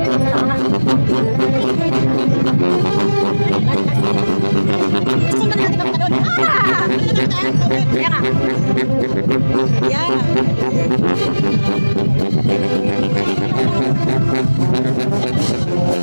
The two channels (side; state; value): both; inverted; correlation -1.00